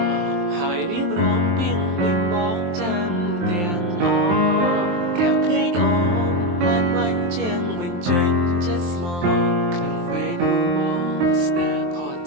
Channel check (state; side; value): late; left; 23 ms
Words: ់ហើយរៀបរាប់ពីងពេញបងចាំទាំងអកែវភ្នែកអូនបានវាញ់ជាងបញ្ចេញចិត្តស្មោះក្នុងពេលនោះបងស្ទើរផុត